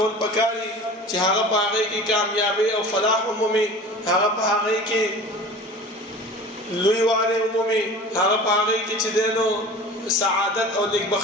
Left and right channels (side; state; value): both; normal; correlation 0.39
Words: پکاري چې هغه په هغه کې کامیابی او فلاح عمومي هغه په هغه کې لوی واله عمومي هغه په هغه کې چې دینو سعادت او